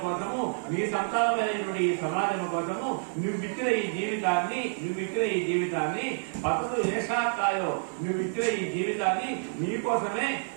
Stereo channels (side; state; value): left; silent; 59 dB below the other